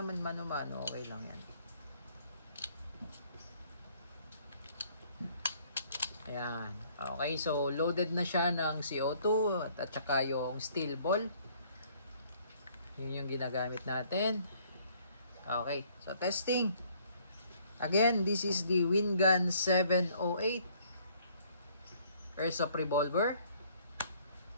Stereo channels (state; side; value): inverted; both; correlation -0.61